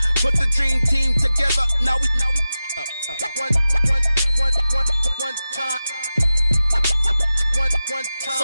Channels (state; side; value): inverted; both; correlation -0.93